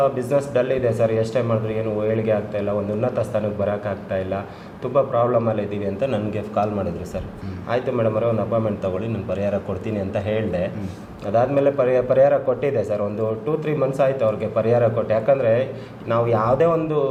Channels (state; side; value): identical; both; correlation 1.00